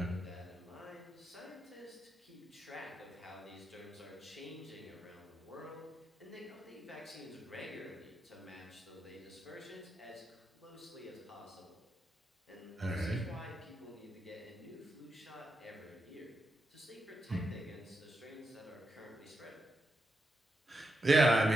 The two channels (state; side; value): normal; both; correlation 0.85